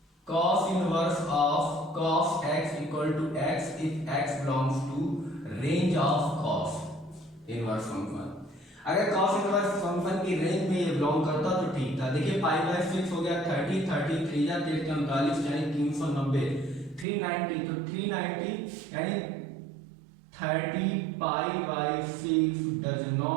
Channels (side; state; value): left; drops out; at 17.1 s